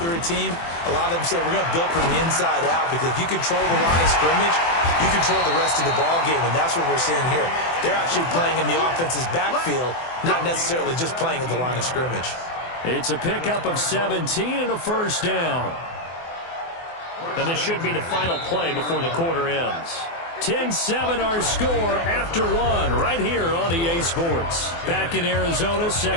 a team, a lot of them say we're going to build from the inside out because if you control the line of scrimmage, you control the rest of the ball game, and that's what we're seeing here. They're actually playing in the offense's backfield, not necessarily just playing at the line of scrimmage. It's a pickup of 17 and a 1st down. And this should be the final play before the quarter ends. 10-7 our score after 1 right here on EA Sports. Back in Arizona,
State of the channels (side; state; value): right; late; 24 ms